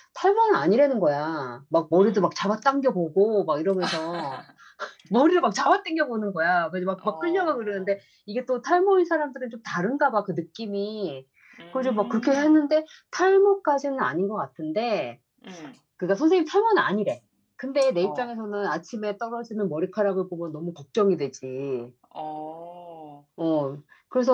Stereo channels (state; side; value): identical; both; correlation 1.00